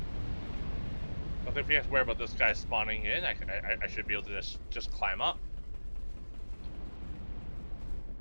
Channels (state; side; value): inverted; both; correlation -1.00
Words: I think we have to worry about this guy spawning in. I should be able to just climb up.